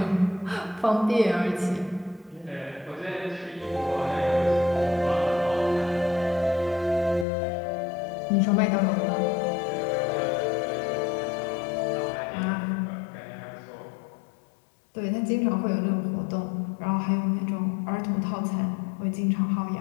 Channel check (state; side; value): drops out; right; at 7.2 s